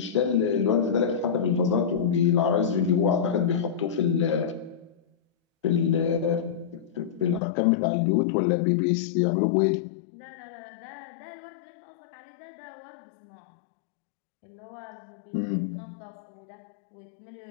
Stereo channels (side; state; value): right; drops out; at 7.4 s